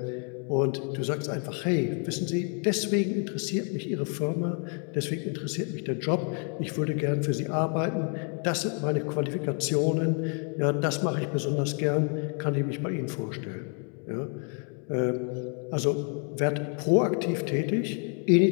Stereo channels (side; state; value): right; quieter; 39.7 dB